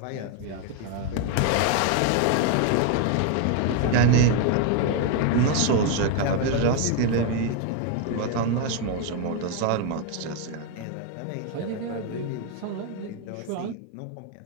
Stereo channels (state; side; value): different; both; correlation 0.01